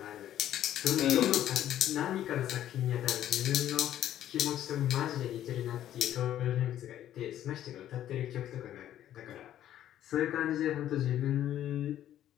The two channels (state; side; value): quieter; right; 11.8 dB